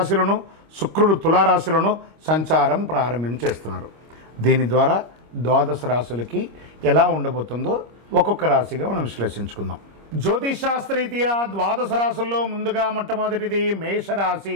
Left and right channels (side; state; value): left; late; 25 ms